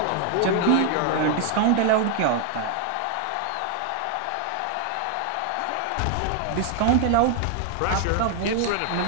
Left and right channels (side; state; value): both; different; correlation 0.00